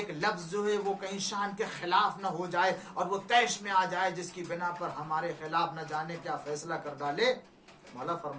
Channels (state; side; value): identical; both; correlation 1.00